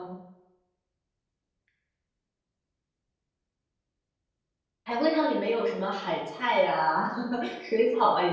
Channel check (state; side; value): identical; both; correlation 1.00